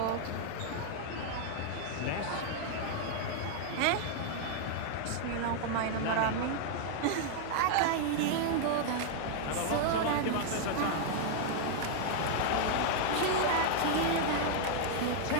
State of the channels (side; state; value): both; different; correlation 0.00